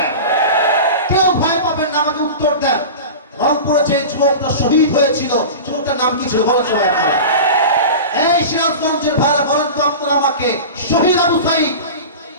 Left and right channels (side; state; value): both; inverted; correlation -0.30